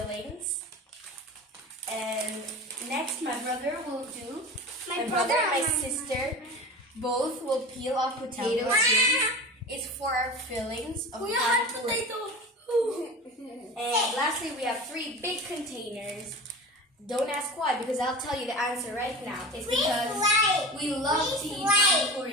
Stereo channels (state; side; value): normal; both; correlation 0.32